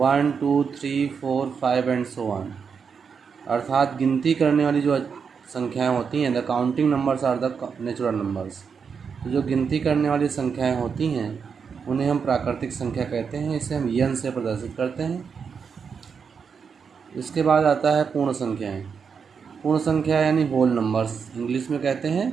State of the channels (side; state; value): left; quieter; 6.2 dB